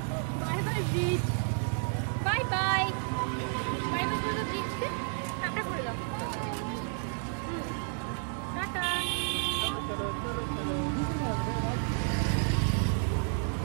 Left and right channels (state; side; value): silent; left; 57 dB below the other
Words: bye bridge, bye bye bye bye করে ব্রিজকে tata করে দাও। টাটা।